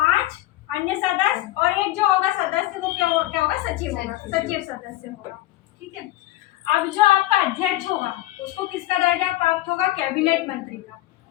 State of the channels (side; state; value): right; quieter; 16.2 dB